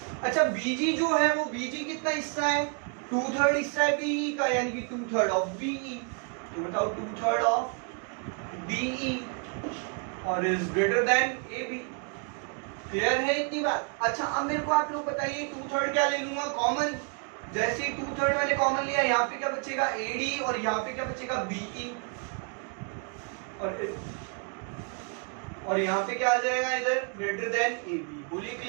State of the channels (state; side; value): quieter; left; 39.0 dB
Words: अच्छा, BG जो है वो BG कितना हिस्सा है? 2/3 हिस्सा है BE का, यानी कि 2/3 ऑफ BE। तो बताओ 2/3 ऑफ BE और is greater then AB। Clear है इतनी बात? अच्छा, अब मेरे को आप लोग बताइए 2/3 क्या ले लूंगा कॉमन? जैसे 2/3 मैंने कॉमन लिया, यहाँ पे क्या बचेगा? AD, और यहाँ पे क्या बचेगा? BE, और यहाँ पे क्या आ जाएगा? इधर ग्रेटर देन AB। बोलिए